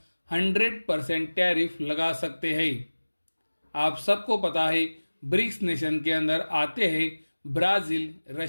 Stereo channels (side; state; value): both; inverted; correlation -1.00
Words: 100% टैरिफ लगा सकते हैं। आप सबको पता है ब्रिक्स नेशन के अंदर आते हैं ब्राज़ील,